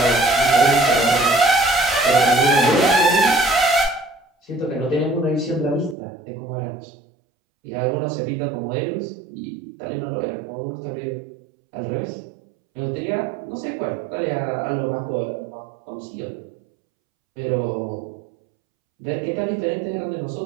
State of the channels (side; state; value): left; drops out; at 6.0 s